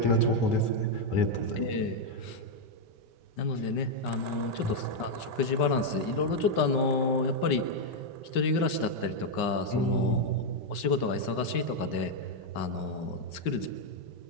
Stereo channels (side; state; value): right; late; 5.2 ms